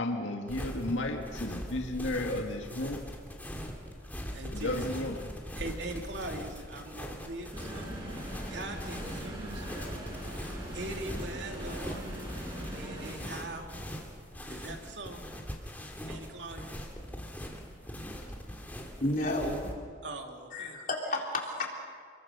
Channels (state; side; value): normal; both; correlation 0.43